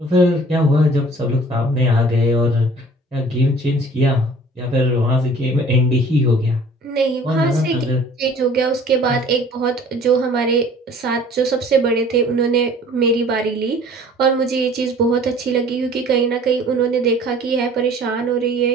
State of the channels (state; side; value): normal; both; correlation 0.50